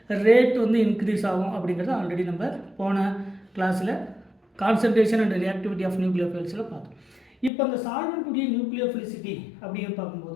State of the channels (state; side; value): drops out; right; at 7.5 s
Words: ரேட் வந்து இன்க்ரீஸ் ஆகும் அப்படிங்கிறத ஆல்ரெடி நம்ம போன கிளாஸில் கான்சன்ட்ரேஷன் அண்ட் ரியாக்டிவிட்டி ஆஃப் நியூக்ளியோஃபைல்ஸில் பார்த்தோம். இப்போ அந்த சால்வெண்ட்டுடைய நியூக்ளியோஃபிலிசிட்டி அப்படின்னு